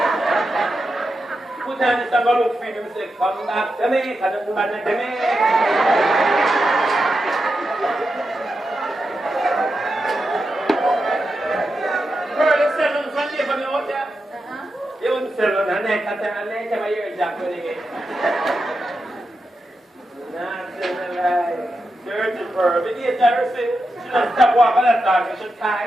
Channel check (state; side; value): normal; both; correlation 0.88